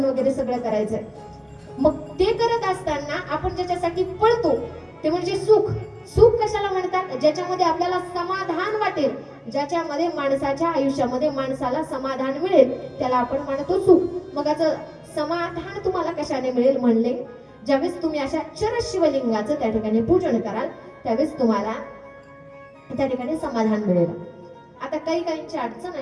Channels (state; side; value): identical; both; correlation 1.00